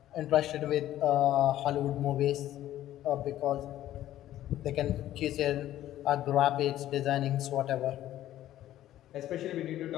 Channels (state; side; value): quieter; right; 13.2 dB